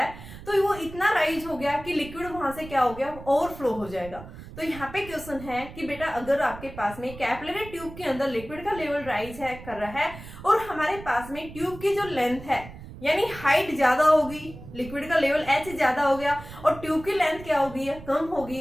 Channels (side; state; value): right; noise; rumble, 15 dB below the sound